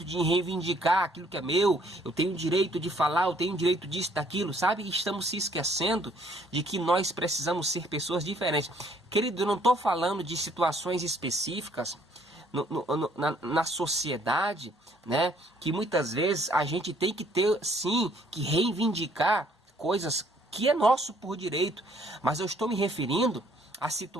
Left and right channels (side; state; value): both; normal; correlation 0.63